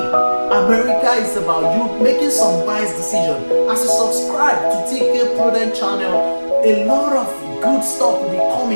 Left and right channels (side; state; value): both; inverted; correlation -1.00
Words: America is about you making some wise decisions. As you subscribe to TK Prudent channel, a lot of good stuff will be